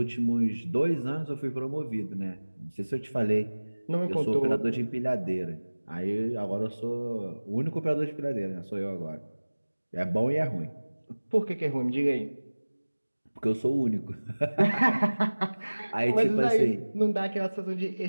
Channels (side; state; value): both; inverted; correlation -1.00